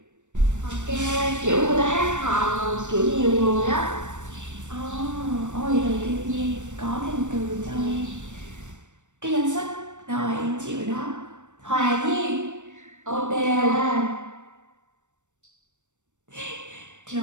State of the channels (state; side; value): late; left; 0.84 ms